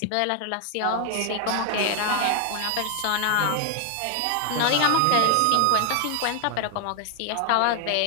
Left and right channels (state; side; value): different; both; correlation 0.00